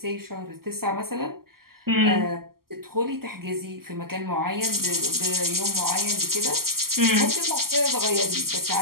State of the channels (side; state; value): left; late; 0.93 ms